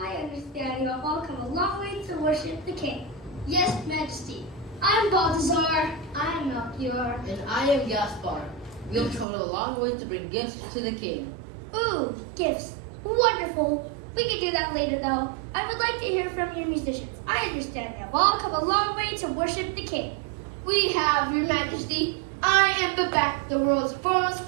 understand you have all come a long way to worship the king. Yes, Majesty. I'm Balthazar. I am Melchior. And I am Gaspar. We have traveled a long way to bring gifts to the king. Ooh, gifts. Wonderful. We can do that later, though. I would like to hear from your musicians. I understand you have all come a long way to worship the king. We have, Your Majesty. I am Babak, the world's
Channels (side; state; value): left; drops out; at 9.2 s